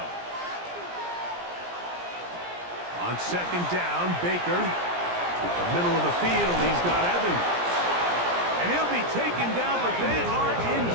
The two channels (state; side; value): late; left; 17 ms